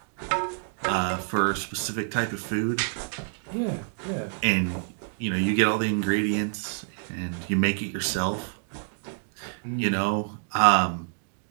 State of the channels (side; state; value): left; silent; digital silence